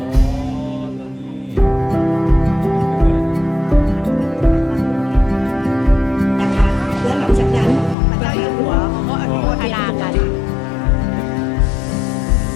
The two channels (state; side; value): drops out; right; at 8.0 s